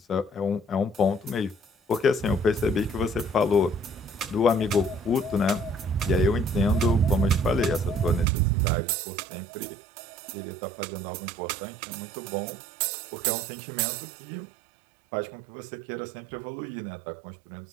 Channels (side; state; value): left; drops out; at 8.2 s